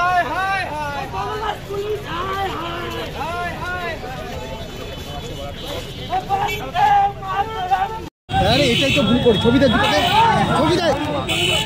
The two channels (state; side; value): identical; both; correlation 1.00